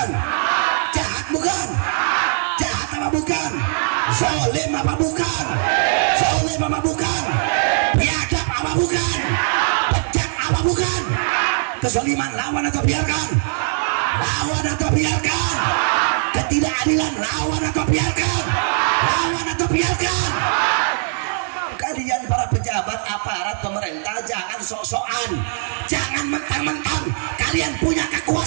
Jahat bukan? Jahat apa bukan? Zalim apa bukan? Zalim apa bukan? Biadab apa bukan? Bejat apa bukan? Kezaliman lawan atau biarkan? Lawan atau biarkan? Ketidakadilan lawan atau biarkan? Lawan atau biarkan? Kalian para pejabat pemerintah jangan sok-sokan, jangan mentang-mentang kalian punya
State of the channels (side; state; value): left; silent; digital silence